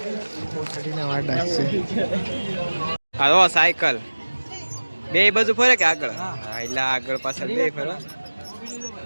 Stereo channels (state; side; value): inverted; both; correlation -1.00